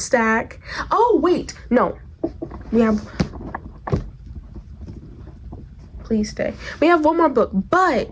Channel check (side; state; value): both; identical; correlation 1.00